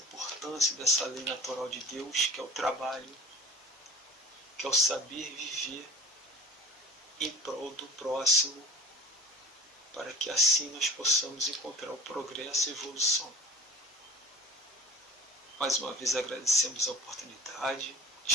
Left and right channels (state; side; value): normal; both; correlation 0.43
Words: dessa lei natural de Deus, que é o trabalho, que é o saber viver em prol do próximo, para que assim nós possamos encontrar o progresso e a evolução. Mais uma vez agradecemos a oportunidade,